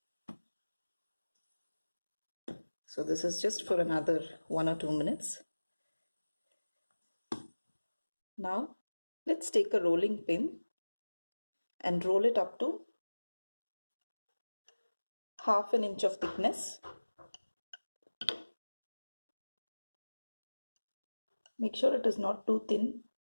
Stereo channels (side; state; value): both; inverted; correlation -1.00